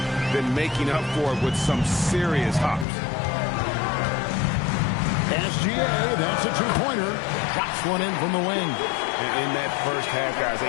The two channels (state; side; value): drops out; right; at 2.9 s